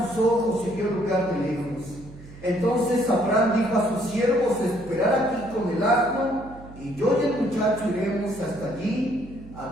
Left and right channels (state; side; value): noise; right; hum, 18 dB below the sound